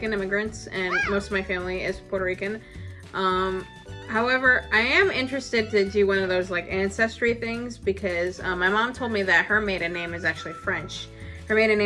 immigrants, and most of my family is Puerto Rican. However, I am interested to do one of those like ancestry things because my mom told me that her maiden name is actually French. Her maiden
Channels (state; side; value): identical; both; correlation 1.00